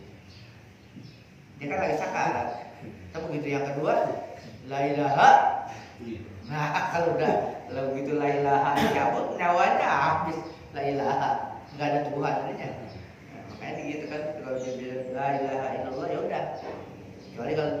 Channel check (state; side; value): identical; both; correlation 1.00